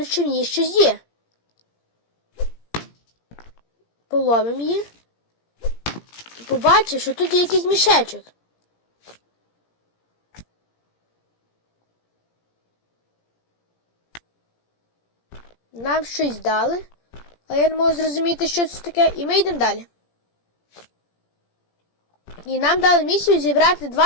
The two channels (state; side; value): late; right; 17 ms